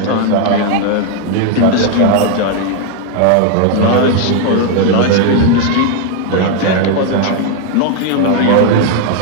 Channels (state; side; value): different; both; correlation 0.01